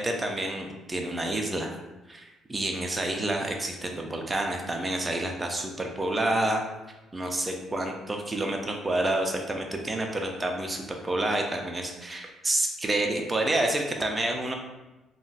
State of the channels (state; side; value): normal; both; correlation 0.83